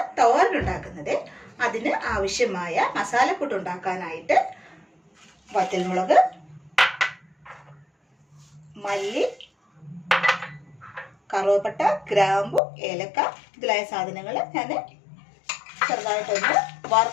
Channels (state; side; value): drops out; right; at 12.6 s